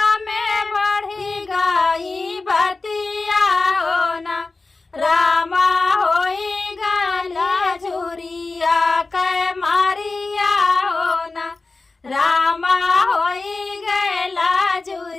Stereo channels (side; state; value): right; quieter; 3.6 dB